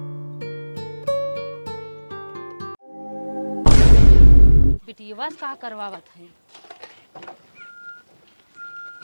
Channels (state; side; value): inverted; both; correlation -1.00